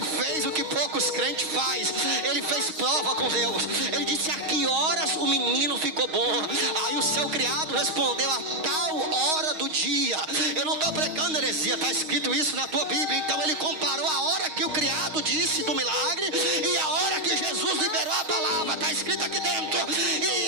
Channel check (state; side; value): late; left; 6.4 ms